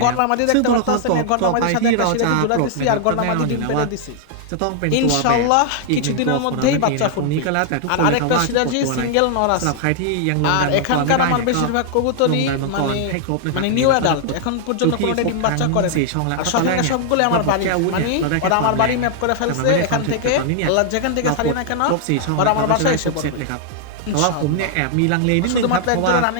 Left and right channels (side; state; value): both; different; correlation -0.01